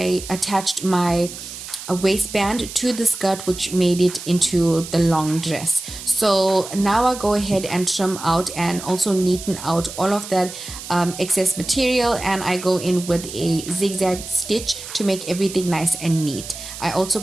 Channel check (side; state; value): right; noise; hiss, 11 dB below the sound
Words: attached my waistband to the skirt, which made it into the long dress. So now I go ahead and trim out and also neaten out all of that excess material, and I go in with a zigzag stitch to make everything nice and neat. I also